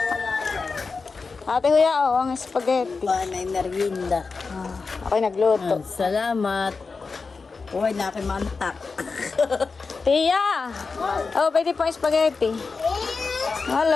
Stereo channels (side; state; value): right; quieter; 4.5 dB